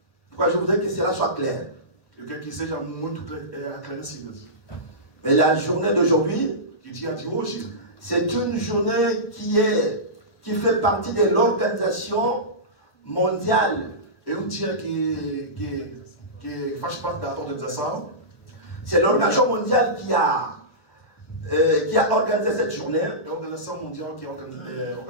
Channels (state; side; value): late; right; 1.0 ms